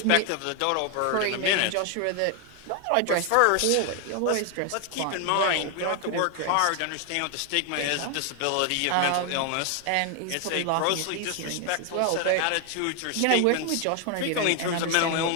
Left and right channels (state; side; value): different; both; correlation 0.01